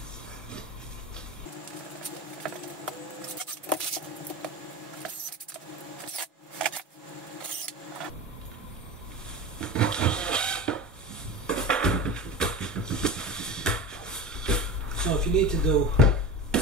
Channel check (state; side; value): normal; both; correlation 0.28